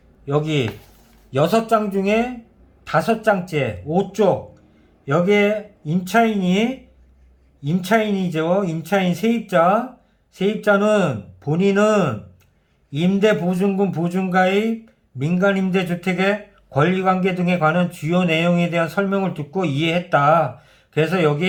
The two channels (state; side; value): identical; both; correlation 1.00